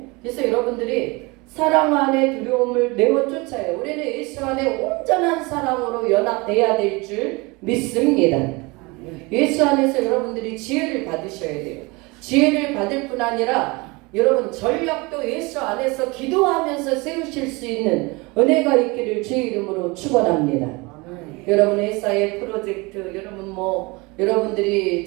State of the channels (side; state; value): left; quieter; 25.7 dB